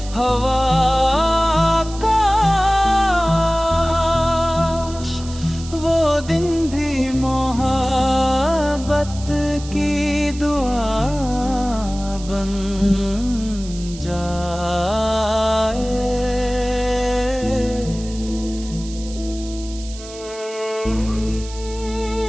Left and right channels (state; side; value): noise; right; hiss, 16 dB below the sound